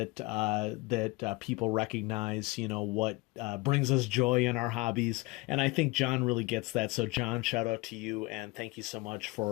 people recognize, what brings us joy in our hobbies. And I think John really gets that. So John, shout out to you and thank you so much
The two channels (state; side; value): quieter; right; 23.5 dB